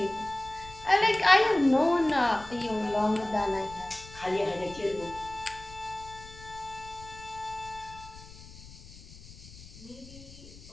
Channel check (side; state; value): left; noise; rumble, 18 dB below the sound